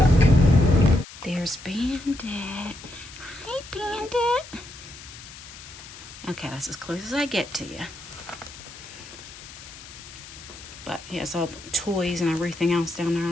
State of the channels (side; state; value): left; noise; hiss, 16 dB below the sound